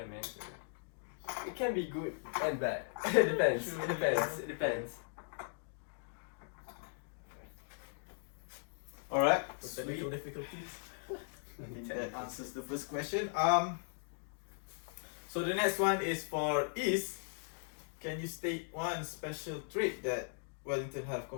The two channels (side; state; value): right; silent; digital silence